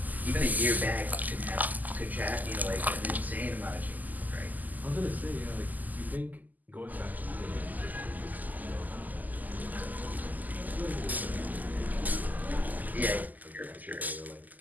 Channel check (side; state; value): left; late; 0.082 ms